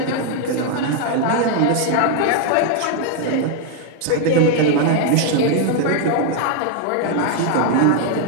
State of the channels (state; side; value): different; both; correlation 0.00